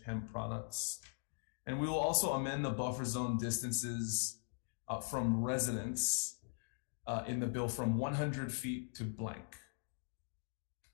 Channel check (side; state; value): right; silent; digital silence